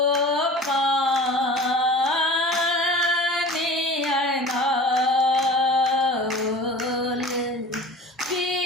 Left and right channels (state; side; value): normal; both; correlation 0.40